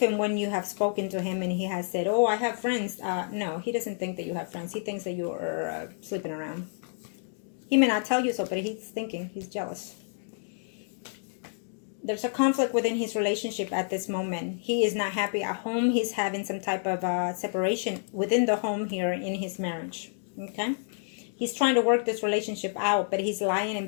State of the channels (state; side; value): silent; right; digital silence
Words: and when you have spoken to him and he has said, oh, I have friends, no, he doesn't think that you have friends. He thinks that you are sleeping around. He may not tell you so, but he's thinking, he's jealous. There's a conflict within his relationship at this moment. He is not happy at home. He's having some type of separation within the home here in his marriage. Okay? He's trying to work this relationship out, but he's lying and